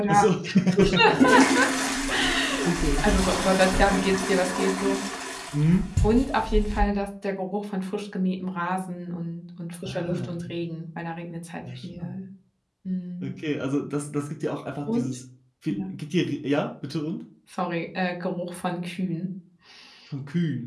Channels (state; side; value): identical; both; correlation 1.00